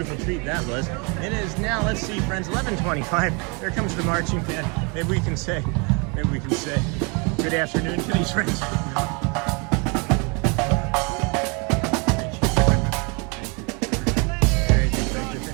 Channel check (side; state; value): left; quieter; 32.2 dB